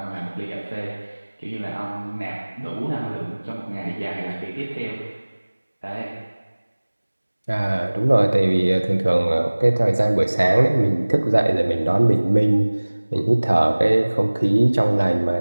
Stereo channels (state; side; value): inverted; both; correlation -1.00